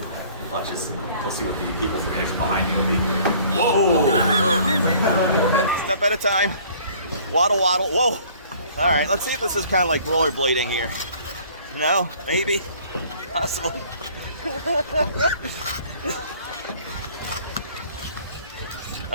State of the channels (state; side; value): inverted; both; correlation -0.54